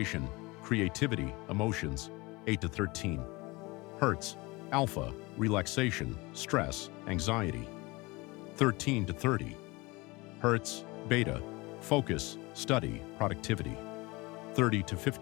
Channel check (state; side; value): quieter; right; 23.9 dB